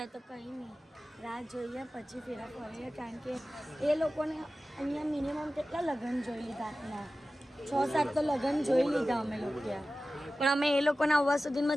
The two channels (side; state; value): both; normal; correlation 0.95